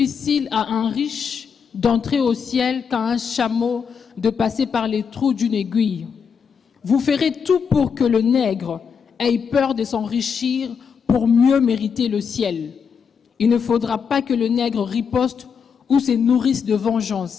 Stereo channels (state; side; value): quieter; right; 6.5 dB